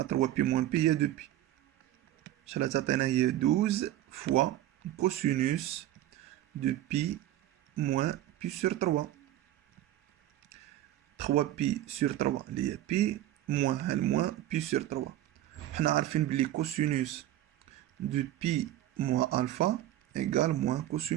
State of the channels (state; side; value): quieter; left; 13.7 dB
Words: 3 بي موان بي هي 2 بي. شحال تعطينا؟ هي 12 فوا كوسينوس دو بي موان بي سور 3. 3 pi sur 3 اللي هي pi moins الموان pi sur 3. حنا عارفين بلي cosinus de pi moins alpha égale moins